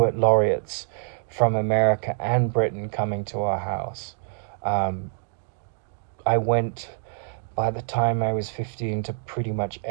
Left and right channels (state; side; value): silent; left; digital silence